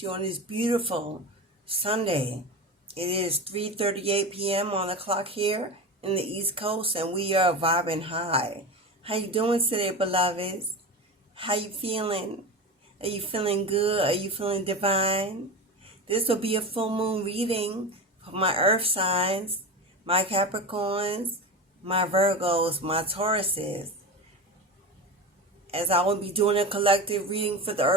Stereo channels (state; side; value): normal; both; correlation 0.25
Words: you on this beautiful Sunday. It is 3:38 p.m. on the clock here in the East Coast, and we are vibing high. How you doing today, beloveds? How you feeling? Are you feeling good? Are you feeling divine? This will be a full moon reading for my earth signs, my Capricorns, my Virgos, my Tauruses. As I will be doing a collective reading for the